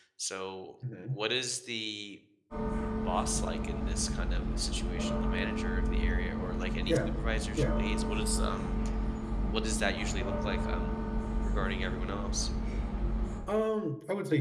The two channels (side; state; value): both; identical; correlation 1.00